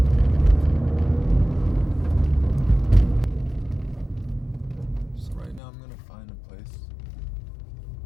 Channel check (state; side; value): drops out; right; at 5.6 s